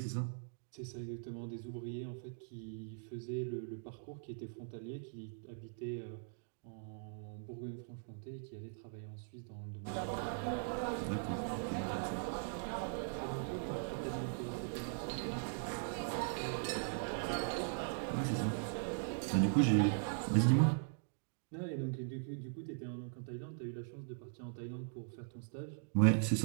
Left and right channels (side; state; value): left; silent; digital silence